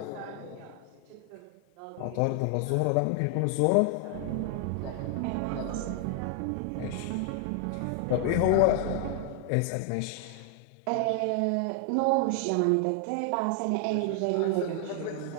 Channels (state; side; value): different; both; correlation 0.00